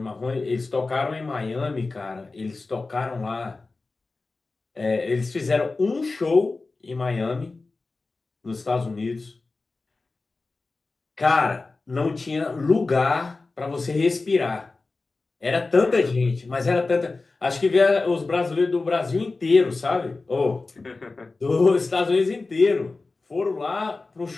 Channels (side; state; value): right; quieter; 3.6 dB